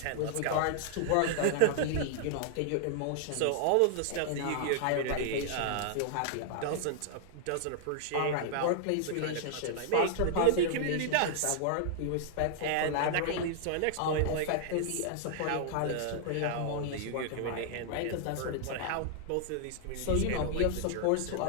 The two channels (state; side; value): different; both; correlation -0.01